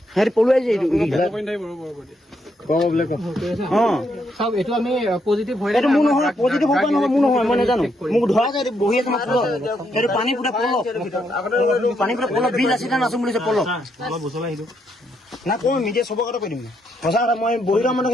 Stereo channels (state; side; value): normal; both; correlation 0.77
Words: সিহঁতি পলুৱাইছে এইটো এইটো আমি পজিটিভ হৈ এইটো মোৰ নহয় পজিটিভ হ'ব নহয় মোৰ নহয় মই নাজানো মোক ধৰা যায় বহি আছে মোক সেইটো পানী পুৰা পলক পানী পুৰা পলক বিল আছে নাচো বুলিছে পলক না কওঁ মিডিয়া চবৰ কথা কৈ দিম সঁচা কথা মই বহি থকা মানুহ